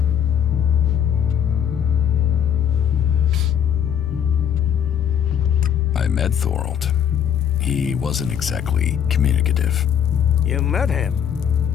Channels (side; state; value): right; quieter; 8.7 dB